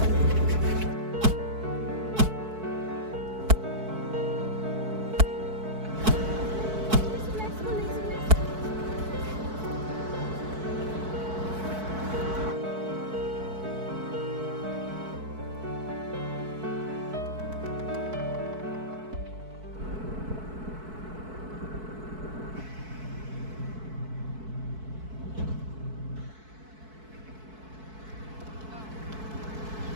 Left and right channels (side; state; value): left; late; 4.6 ms